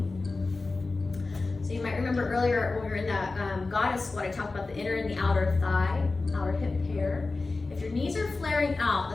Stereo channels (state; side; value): quieter; right; 3.6 dB